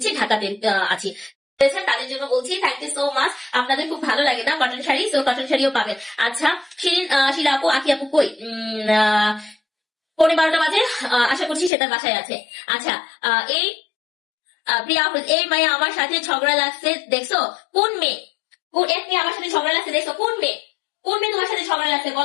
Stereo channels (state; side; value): drops out; right; at 11.7 s